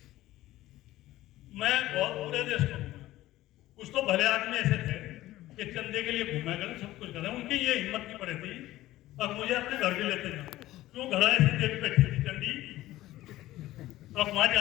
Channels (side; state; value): right; quieter; 15.9 dB